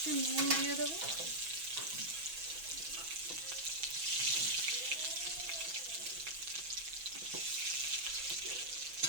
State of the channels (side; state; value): left; late; 6.1 ms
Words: নুন দিয়ে দেবো।